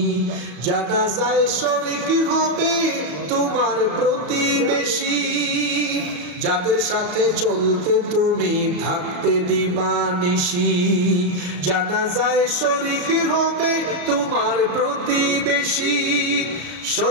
জানাজায় শরীক হবে তোমার প্রতিবেশী। যাদের সাথে চলতে তুমি থাকতে দিবানিশি, জানাজায় শরীক হবে তোমার প্রতিবেশী।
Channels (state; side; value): late; left; 34 ms